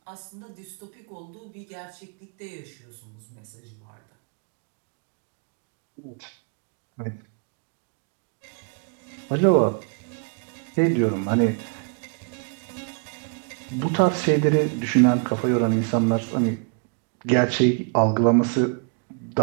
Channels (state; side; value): quieter; left; 38.7 dB